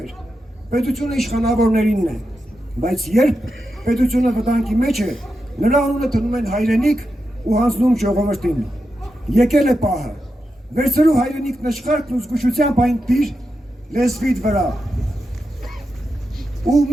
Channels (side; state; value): both; normal; correlation 0.88